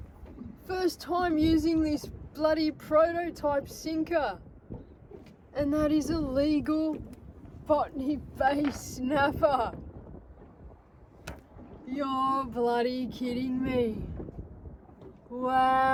First time using this bloody prototype sinker, and that is a legal Botany Bay snapper. You're bloody kidding me.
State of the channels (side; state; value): both; identical; correlation 1.00